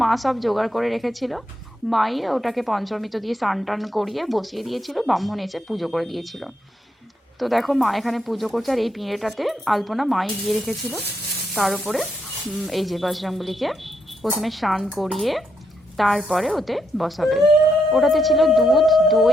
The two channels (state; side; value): normal; both; correlation 0.79